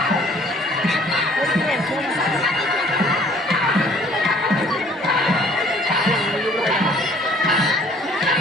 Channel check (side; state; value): both; normal; correlation 0.57